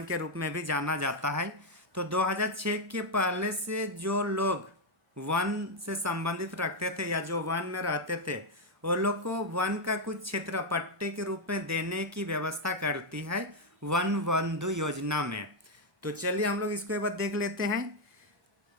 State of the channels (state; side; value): normal; both; correlation 0.01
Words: के रूप में भी जाना जाता है। तो 2006 के पहले से जो लोग वन से संबंधित रखते थे या जो वन में रहते थे, वो लोग को वन का कुछ क्षेत्र पट्टे के रूप में देने की व्यवस्था करती है वन बंधु योजना में। तो चलिए हम लोग इसको एक बार देख लेते हैं।